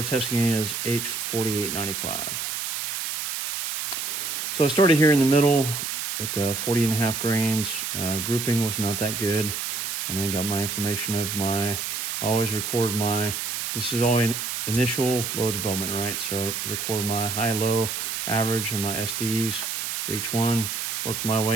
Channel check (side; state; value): right; noise; hiss, 3 dB below the sound